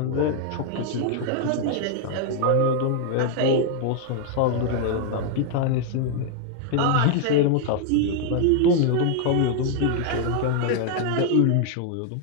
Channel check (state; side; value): different; both; correlation 0.00